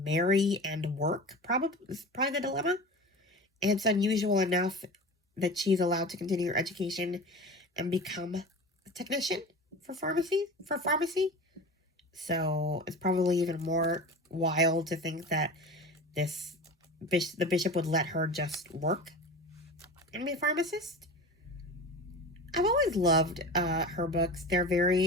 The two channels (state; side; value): normal; both; correlation 0.33